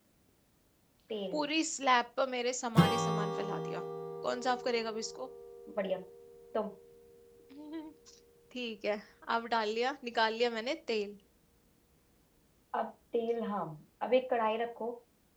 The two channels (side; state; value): both; identical; correlation 1.00